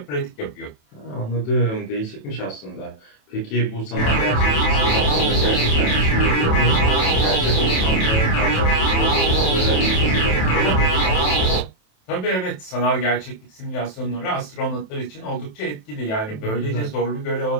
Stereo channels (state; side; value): late; right; 27 ms